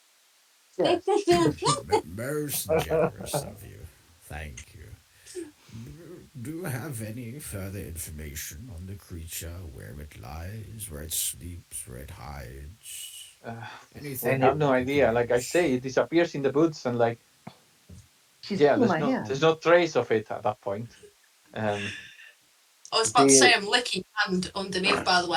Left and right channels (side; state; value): both; identical; correlation 1.00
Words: Yes. Most generous of you. Thank you. Do you have any further information on the creature, where it lies, where it sleeps, where it hides? Uh, we Anything Any have that no we could idea. Like I use? say, it disappears in the boots, and like, She's yeah, holding my hand. there's no trace of it at that point. Um, I was do about to say you I'm licking hand underneath, by the